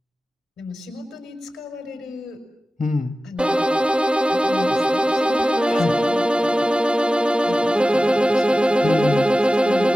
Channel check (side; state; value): both; normal; correlation 0.95